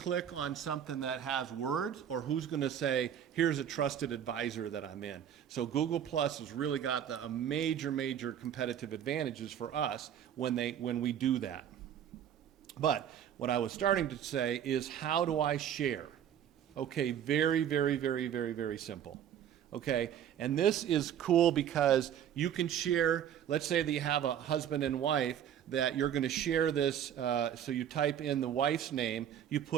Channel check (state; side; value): quieter; left; 9.6 dB